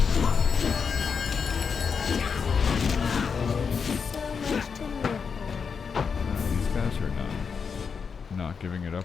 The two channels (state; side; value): quieter; right; 5.9 dB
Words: these guys are not giving it